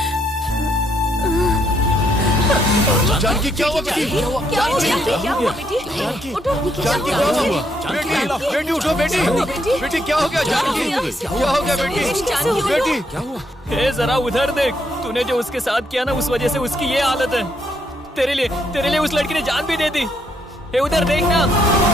जानकी क्या हुआ बेटी? क्या हो गया? क्या हुआ बेटी? उठो। जानकी क्या हुआ? बेटी उठो बेटी। बेटी क्या हो गया जानकी? क्या हो गया बेटी? बेटी क्या हुआ? हे जरा उधर देख, तूने जो उसके साथ किया ना उस वजह से उसकी ये हालत है। तेरे लिए उस लड़की ने जान भी दे दी। हे उधर देख ना।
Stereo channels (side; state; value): both; normal; correlation 0.74